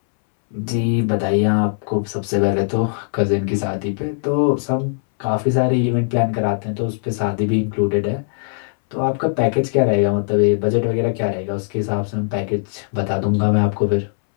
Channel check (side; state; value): right; silent; 66 dB below the other